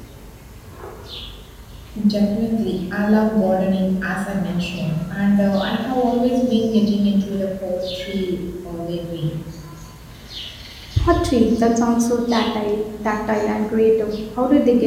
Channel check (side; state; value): both; identical; correlation 1.00